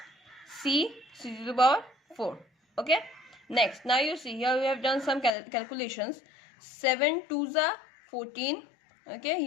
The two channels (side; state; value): right; drops out; at 5.3 s